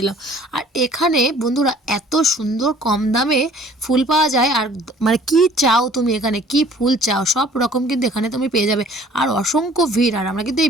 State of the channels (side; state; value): both; normal; correlation 0.53